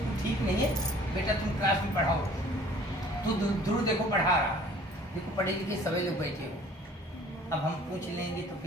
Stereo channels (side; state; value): both; normal; correlation 0.52